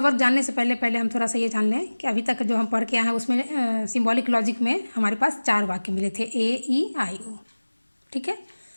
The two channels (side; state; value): both; inverted; correlation -1.00